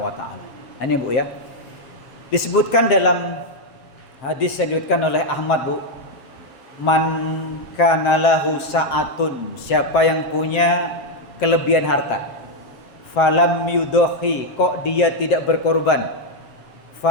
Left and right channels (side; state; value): right; late; 7.7 ms